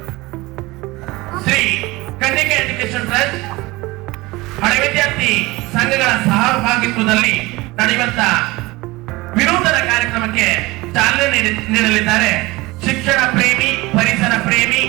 ಶ್ರೀ ಕನ್ನಿಕೆ ಎಜುಕೇಶನ್ ಟ್ರಸ್ಟ್ ಹಳೆ ವಿದ್ಯಾರ್ಥಿ ಸಂಘಗಳ ಸಹಭಾಗಿತ್ವದಲ್ಲಿ ನಡೆಯುವಂತ ವಿನೂತನ ಕಾರ್ಯಕ್ರಮಕ್ಕೆ ಚಾಲನೆ ನೀಡಲಿದ್ದಾರೆ. ಶಿಕ್ಷಣ ಪ್ರೇಮಿ, ಪರಿಸರ ಪ್ರೇಮಿ,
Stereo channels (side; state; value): left; quieter; 21.4 dB